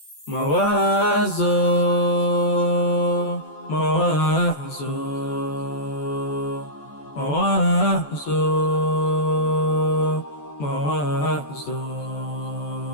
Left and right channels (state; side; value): late; right; 14 ms